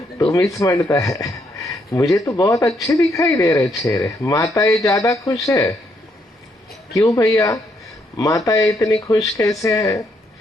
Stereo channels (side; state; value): both; normal; correlation 0.74